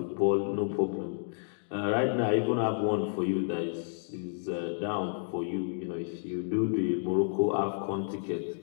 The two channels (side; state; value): right; silent; digital silence